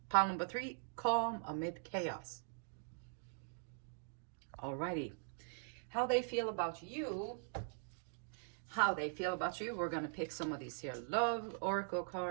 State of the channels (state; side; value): silent; left; digital silence